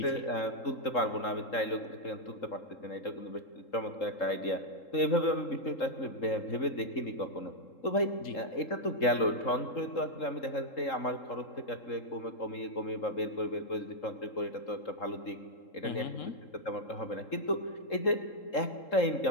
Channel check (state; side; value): late; right; 3.7 ms